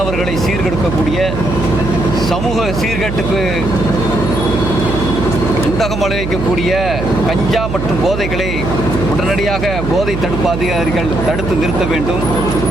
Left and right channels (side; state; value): right; noise; hum, 4 dB below the sound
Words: சீர்கெடுக்கக்கூடிய, சமூக சீர்கேட்டுக்கு உண்டகம் விளைவிக்கக்கூடிய கஞ்சா மற்றும் போதைகளை உடனடியாக போதை தடுப்பு அதிகாரிகள் தடுத்து நிறுத்த வேண்டும்.